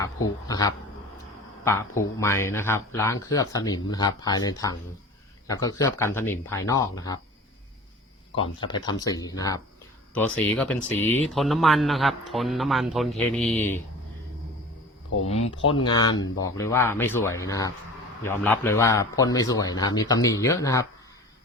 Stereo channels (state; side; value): normal; both; correlation 0.39